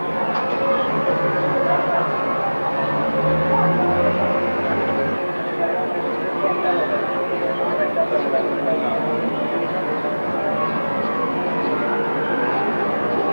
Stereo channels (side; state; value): both; inverted; correlation -1.00